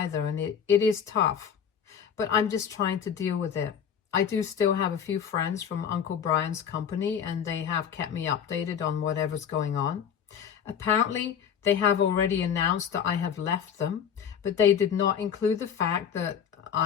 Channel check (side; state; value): right; quieter; 8.0 dB